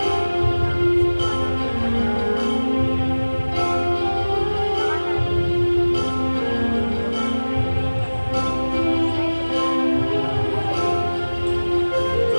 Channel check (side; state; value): both; inverted; correlation -1.00